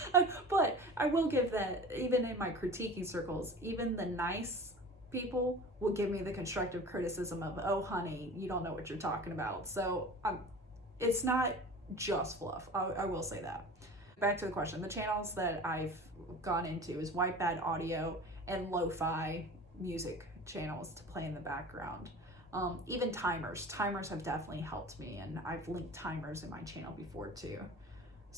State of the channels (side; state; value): both; normal; correlation 0.38